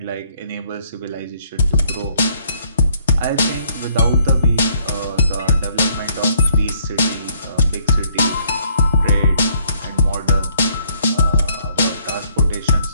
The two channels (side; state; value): both; inverted; correlation -0.66